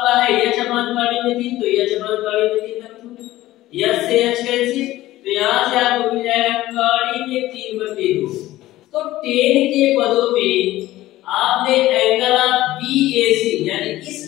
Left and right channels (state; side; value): quieter; right; 15.9 dB